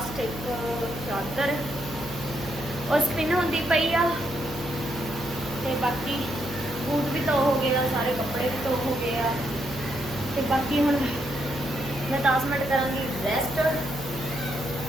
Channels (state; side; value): noise; right; hum, 13 dB below the sound